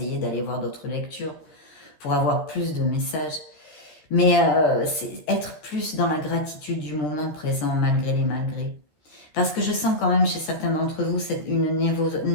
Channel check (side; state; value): right; late; 13 ms